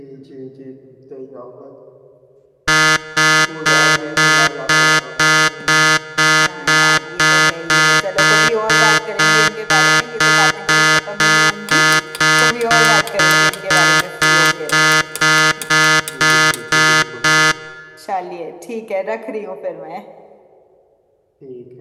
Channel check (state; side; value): identical; both; correlation 1.00